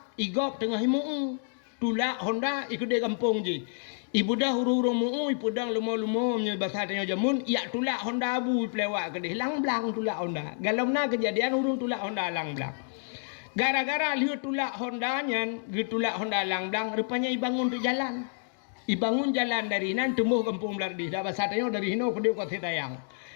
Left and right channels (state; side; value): silent; right; digital silence